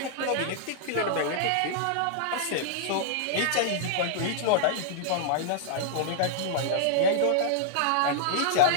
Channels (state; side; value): different; both; correlation -0.01